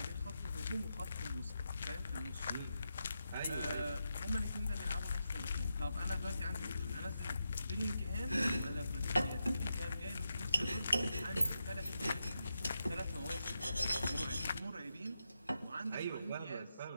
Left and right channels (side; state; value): both; inverted; correlation -0.86